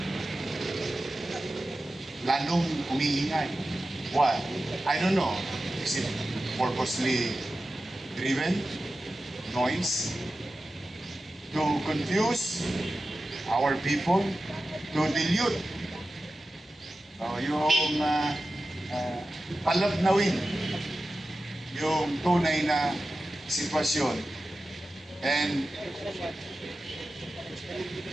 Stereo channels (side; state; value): both; normal; correlation 0.94